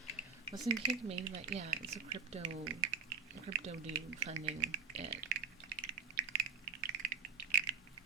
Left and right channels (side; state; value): left; quieter; 6.4 dB